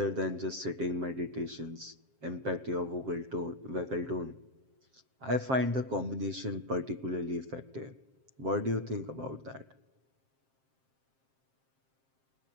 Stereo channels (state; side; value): late; left; 7.6 ms